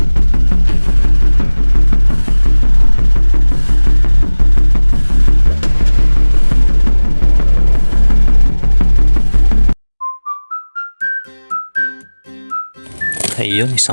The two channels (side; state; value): both; inverted; correlation -1.00